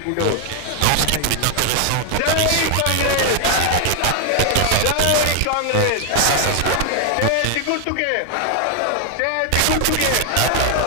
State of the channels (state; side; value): different; both; correlation 0.00